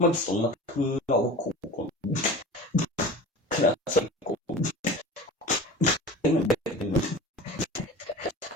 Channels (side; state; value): both; normal; correlation 0.36